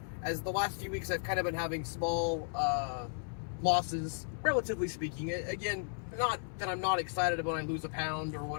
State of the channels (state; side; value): silent; right; 54 dB below the other